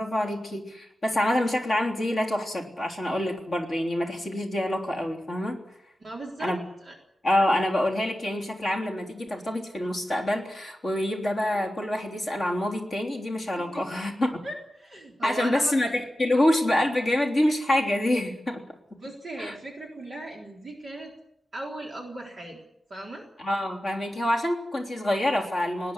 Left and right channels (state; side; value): normal; both; correlation 0.93